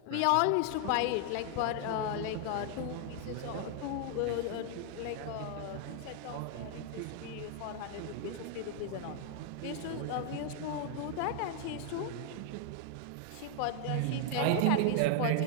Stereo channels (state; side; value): different; both; correlation 0.00